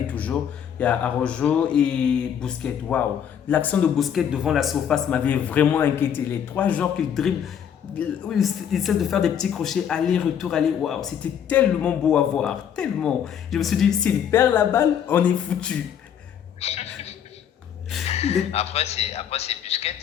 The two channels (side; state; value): right; quieter; 8.7 dB